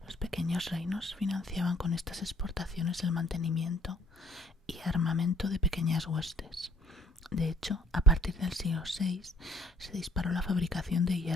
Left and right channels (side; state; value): both; normal; correlation 0.60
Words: Los pequeños reinos financiaban con estas exportaciones el mantenimiento y armamento de pequeñas huestes, De hecho, a partir del siglo VI se disparó la fabricación de